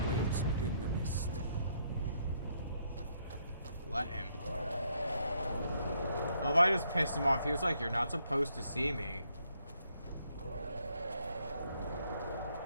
waits within the mist. Let him. Oh, if I just pissed him off, he was like, "You're not supposed to see me."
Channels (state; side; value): inverted; both; correlation -0.73